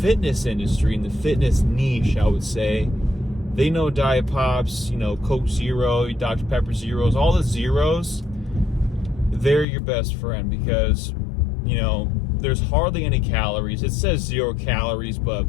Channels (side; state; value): right; drops out; at 9.7 s